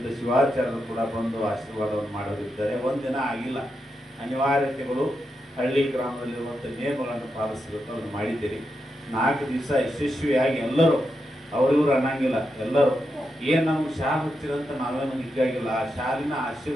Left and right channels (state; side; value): normal; both; correlation 0.86